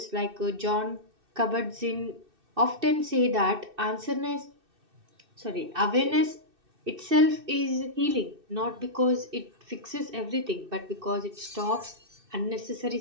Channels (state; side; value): late; left; 2.6 ms